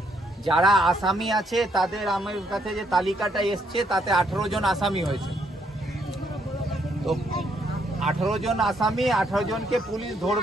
যারা আসামি আছে তাদের আমার কাছে যে তালিকাটা এসছে তাতে 18 জন আসামি হয়েছে। তো 18 জন আসামি, 18 জনকে পুলিশ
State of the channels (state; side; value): normal; both; correlation 0.72